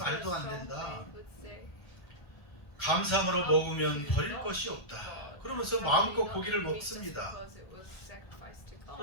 안 된다. 감사함으로 먹으면 버릴 것이 없다. 그러면서 마음껏 고기를 먹습니다.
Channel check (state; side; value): late; right; 1.4 ms